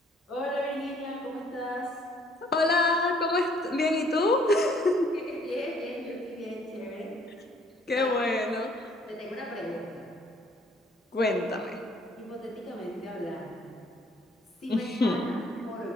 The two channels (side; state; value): both; normal; correlation 0.61